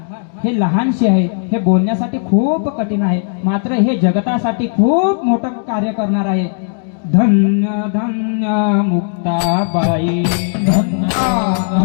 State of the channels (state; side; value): silent; right; digital silence